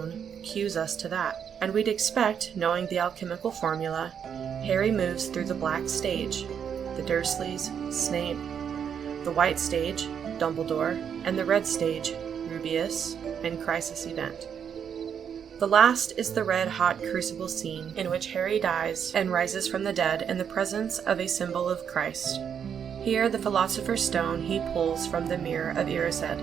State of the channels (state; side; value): quieter; left; 7.9 dB